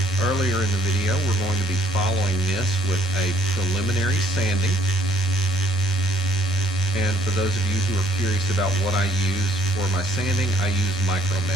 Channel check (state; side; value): normal; both; correlation 0.62